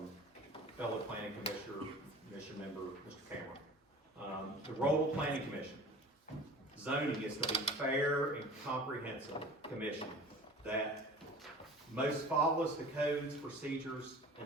fellow planning commission member, Mr. Cameron. The role of planning commission, zoning is to be fair and comprehensive commission that most follows the codes, procedures,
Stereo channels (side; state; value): both; normal; correlation 0.41